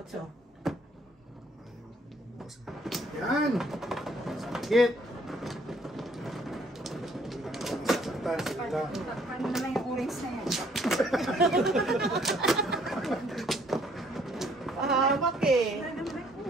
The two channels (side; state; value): both; normal; correlation 0.63